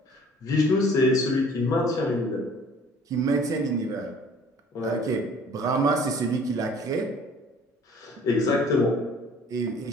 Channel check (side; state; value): both; normal; correlation 0.53